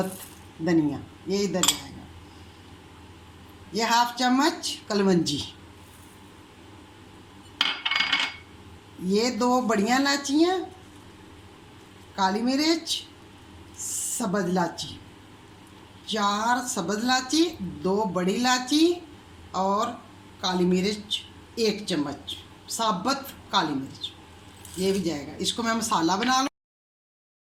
धनिया, ये इधर जाएगा। ये 1/2 चम्मच कलवंजी, ये 2 बड़ियाँ इलाचियाँ, काली मिर्च, सब्ज़ इलाची, 4 सब्ज़ इलाची, 2 बड़ी इलाची और काली मिर्च 1 चम्मच साबुत काली मिर्च, ये भी जाएगा। इसको मैं मसाला बना लूँ।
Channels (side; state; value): both; identical; correlation 1.00